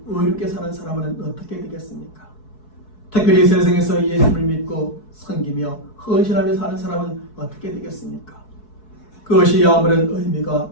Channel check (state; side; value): late; right; 4.7 ms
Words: 의롭게 사는 사람은 어떻게 되겠습니까? 특별히 세상에서 예수를 믿고 섬기며 헌신하며 사는 사람은 어떻게 되겠습니까? 그것이 아무런 의미가